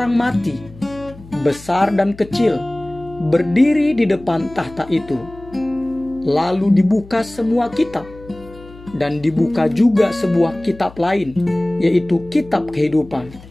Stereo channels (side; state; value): left; noise; hum, 20 dB below the sound